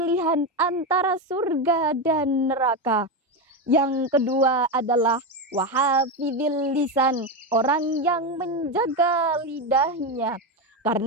antara surga dan neraka. Yang kedua adalah wahafidil lisan, orang yang menjaga lidahnya.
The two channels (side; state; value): both; normal; correlation 0.13